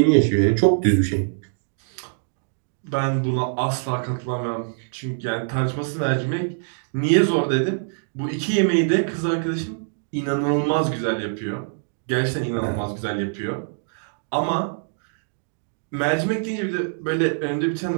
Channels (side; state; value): left; silent; digital silence